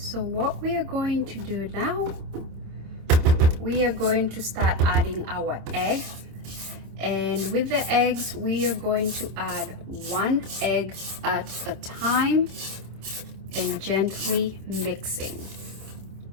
what we are going to do now, we are going to start adding our egg, and with the eggs we are going to add 1 egg at a time and gently mixing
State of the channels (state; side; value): late; left; 26 ms